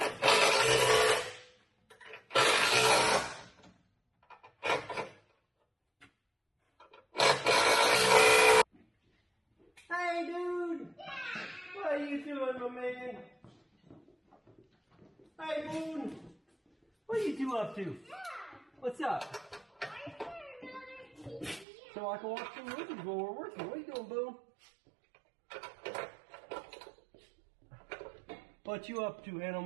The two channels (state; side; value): drops out; left; at 21.7 s